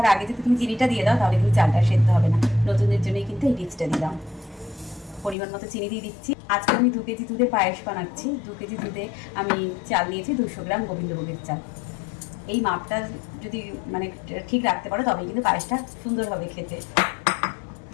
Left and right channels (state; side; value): drops out; right; at 5.4 s